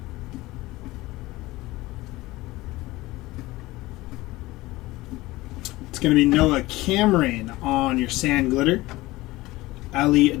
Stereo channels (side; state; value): right; quieter; 19.3 dB